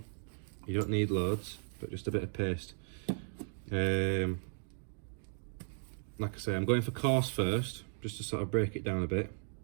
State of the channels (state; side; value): silent; left; 54 dB below the other